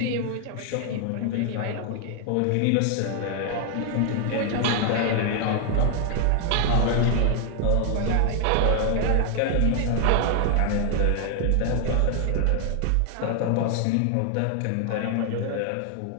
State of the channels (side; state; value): both; different; correlation 0.00